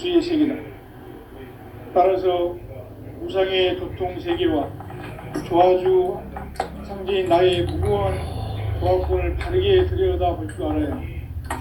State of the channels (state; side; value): identical; both; correlation 1.00